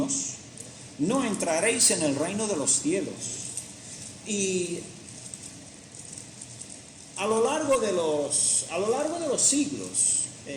no entraréis en el reino de los cielos. Y a lo largo de los siglos,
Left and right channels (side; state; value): both; identical; correlation 1.00